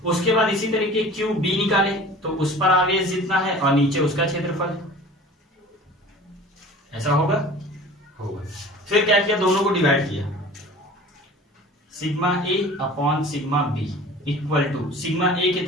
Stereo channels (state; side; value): normal; both; correlation 0.42